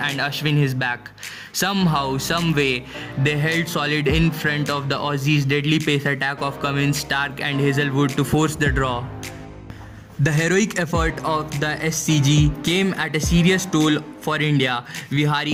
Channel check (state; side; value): identical; both; correlation 1.00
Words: Ashwin his back. Somehow, some way, they held solid in front of the Aussies' deadly pace attack of Cummins, Stark and Hazlewood to force the draw. The heroic effort of the SCG came at a serious toll for India.